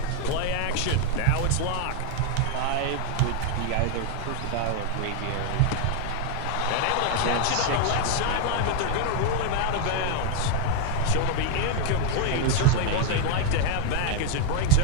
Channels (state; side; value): different; both; correlation 0.00